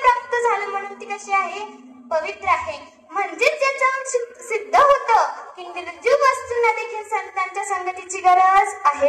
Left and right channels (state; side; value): identical; both; correlation 1.00